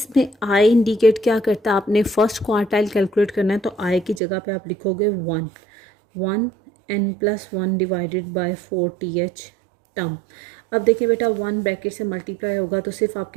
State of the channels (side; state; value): left; drops out; at 4.2 s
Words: I इंडिकेट क्या करता है? आपने फर्स्ट क्वार्टाइल कैलकुलेट करना है, तो I की जगह पे आप लिखोगे 1 n+1 divided bye 4 TH term. अब देखिए बेटा 1 ब्रैकेट से मल्टीप्लाई होगा तो सिर्फ